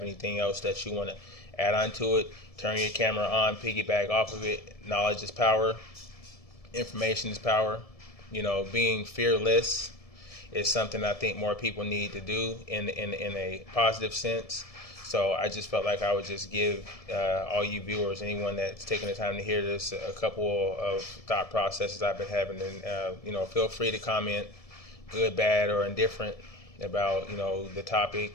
anything else that you want to add on to it, turn your camera on, piggyback off of it. Knowledge is power. Information is power. Being fearless is something I think more people need to do in a positive sense. So I just felt like I would just give all you viewers, anyone that's taking the time to hear this, a couple of thought processes I've been having. And, feel free to comment, good, bad, or indifferent about, the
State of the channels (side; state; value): right; late; 1.7 ms